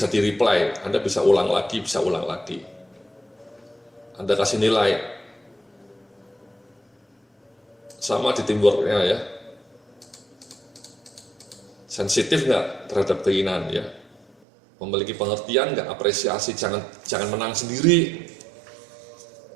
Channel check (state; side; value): drops out; left; at 14.4 s